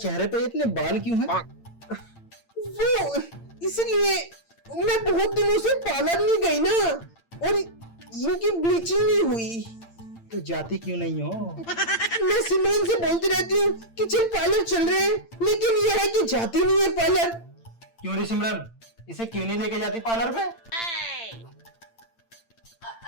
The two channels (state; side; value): late; right; 8.8 ms